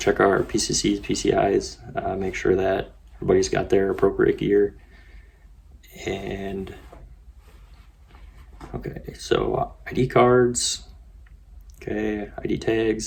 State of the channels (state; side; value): identical; both; correlation 1.00